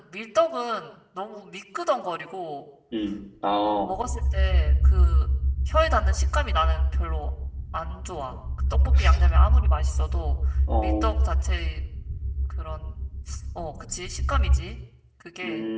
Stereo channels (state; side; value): identical; both; correlation 1.00